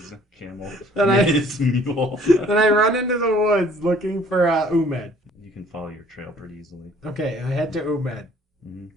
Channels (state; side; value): normal; both; correlation 0.57